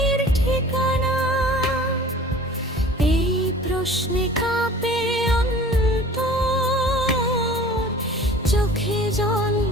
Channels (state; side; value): normal; both; correlation 0.44